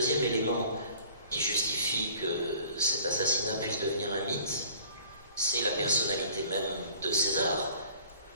élément qui justifie que cet assassinat puisse devenir un mythe, c'est la personnalité même de César,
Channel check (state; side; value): inverted; both; correlation -0.50